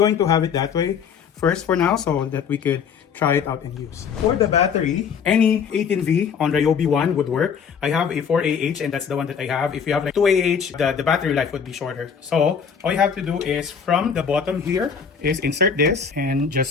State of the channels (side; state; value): right; quieter; 6.7 dB